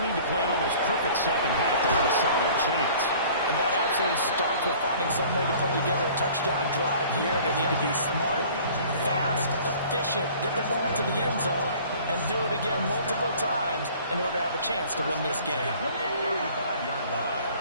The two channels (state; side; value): inverted; both; correlation -0.49